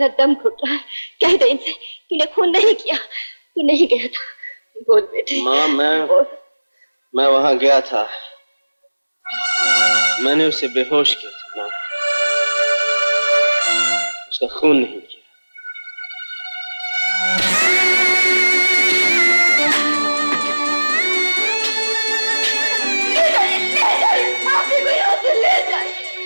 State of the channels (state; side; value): inverted; both; correlation -1.00